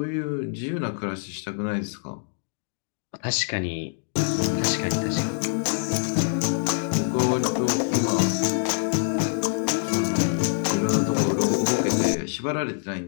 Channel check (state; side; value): silent; right; digital silence